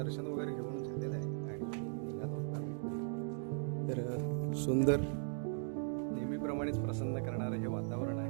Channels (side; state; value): left; silent; digital silence